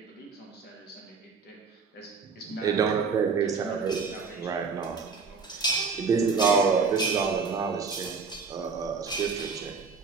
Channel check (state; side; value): quieter; left; 5.0 dB